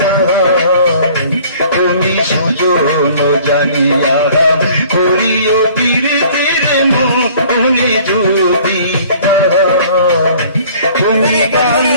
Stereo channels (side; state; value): both; inverted; correlation -0.52